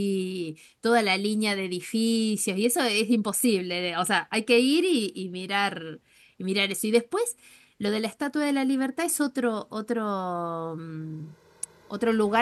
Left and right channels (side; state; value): both; identical; correlation 1.00